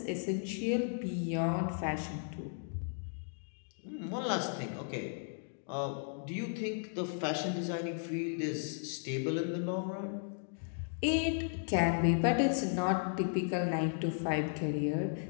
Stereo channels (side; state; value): right; silent; digital silence